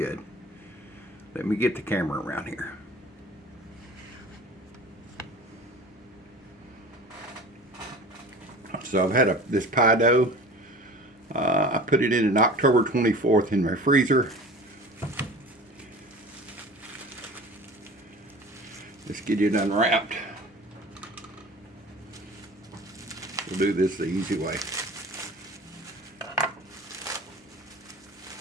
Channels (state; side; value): normal; both; correlation 0.39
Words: Let me get the camera around here. So I've had this pie dough. I put it in an October 24th in my freezer. Let's get it unwrapped. We'll do this the easy way.